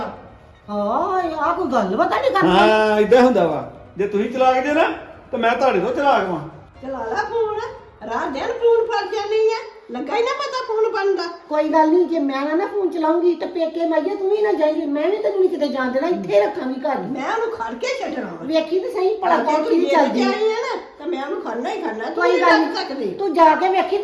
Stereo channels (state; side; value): identical; both; correlation 1.00